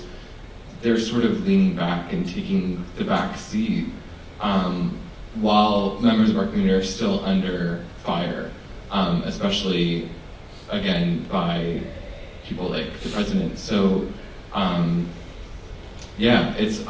they're sort of leaning back and taking the back seat, while members of our community are still under fire, especially, again, by people like the president. So, it's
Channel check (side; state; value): both; identical; correlation 1.00